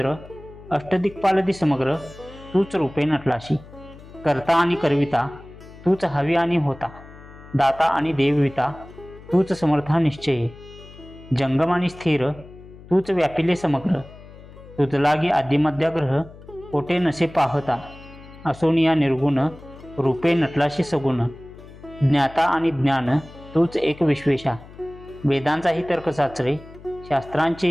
अष्टदिक्पालदी समग्र तूच रूपे नटलाशी. करता आणि करविता तूच हवी आणि होता दाता आणि देवविता तूच समर्था निश्चय. जंगम आणि स्थिर तूच व्यापिले समग्र तुझ लागी आदिमध्याग्रह कोठे नसे पाहता. असोनिया निर्गुण रूपे नटलाशी सगुण. ज्ञाता आणि ज्ञान तूच एक विश्वेशा. वेदांचाही तर्क साचरे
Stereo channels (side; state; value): left; noise; hum, 19 dB below the sound